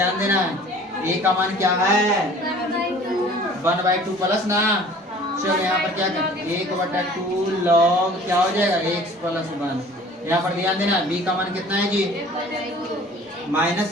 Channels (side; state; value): both; normal; correlation 0.48